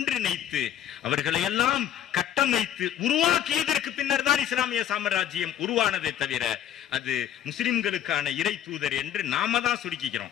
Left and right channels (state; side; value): quieter; right; 10.7 dB